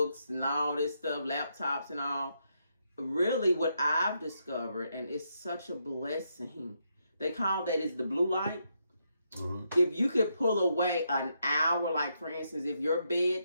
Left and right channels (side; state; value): both; inverted; correlation -0.79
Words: and all this stuff, laptops and all. Really, what I've discovered, and it's such a blessing, they call that is the blue light. If you could pull away an hour, like for instance, if your